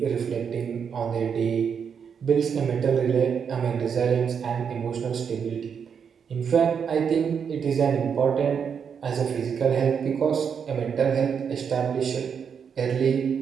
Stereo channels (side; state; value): left; quieter; 7.0 dB